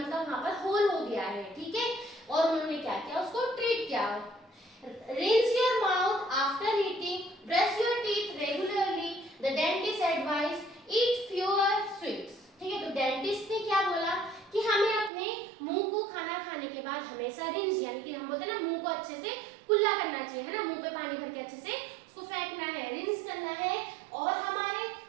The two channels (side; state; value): left; drops out; at 15.1 s